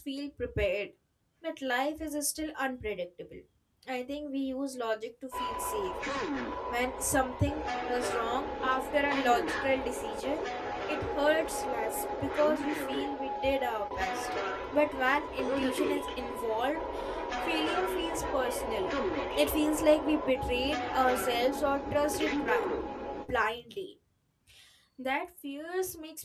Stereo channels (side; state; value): both; identical; correlation 1.00